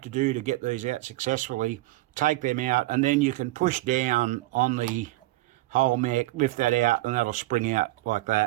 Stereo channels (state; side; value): quieter; left; 18.3 dB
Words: to do to get these out successfully, take them out, and then you can push down on the whole mech, lift that out, and that'll spring out like